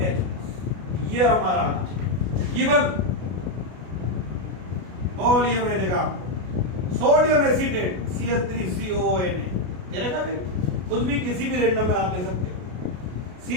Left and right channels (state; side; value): late; left; 33 ms